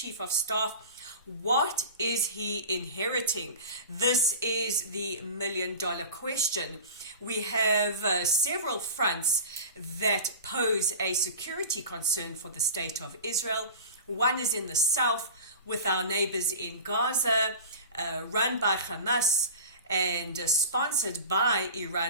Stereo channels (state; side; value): inverted; both; correlation -0.35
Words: of staff, what is he inheriting? This is the million-dollar question. We have several fronts that pose a security concern for the state of Israel. One is in the south with our neighbors in Gaza, run by Hamas and sponsored by